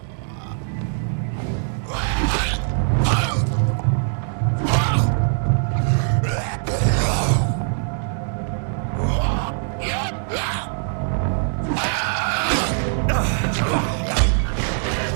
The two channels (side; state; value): left; silent; 64 dB below the other